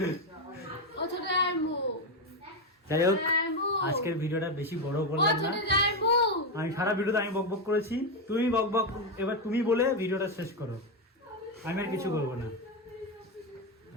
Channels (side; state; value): both; normal; correlation 0.09